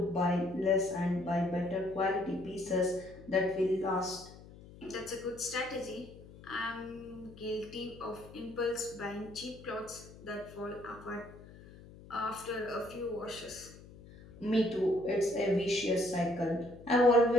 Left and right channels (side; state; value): left; noise; hum, 19 dB below the sound